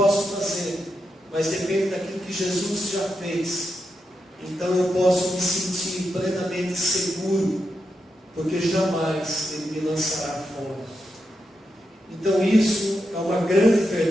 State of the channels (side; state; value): both; normal; correlation 0.86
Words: fazer, mas depende daquilo que Jesus já fez. Então eu posso me sentir plenamente seguro, porque jamais Ele me lançará fora. Então isso é uma grande